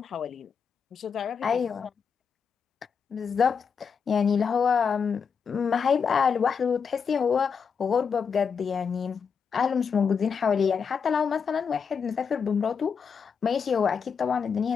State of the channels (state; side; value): quieter; right; 6.3 dB